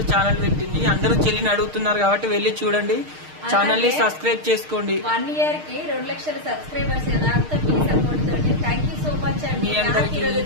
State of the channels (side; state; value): left; late; 6.5 ms